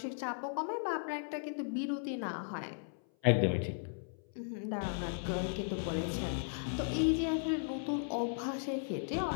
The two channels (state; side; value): silent; right; 53 dB below the other